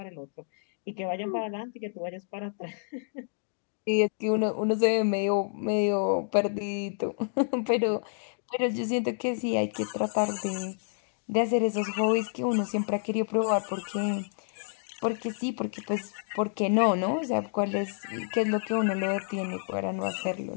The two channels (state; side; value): silent; right; digital silence